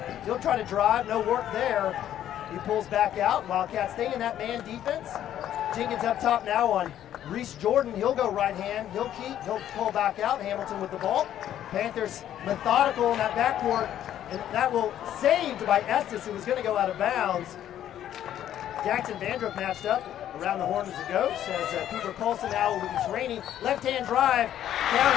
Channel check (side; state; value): right; quieter; 11.2 dB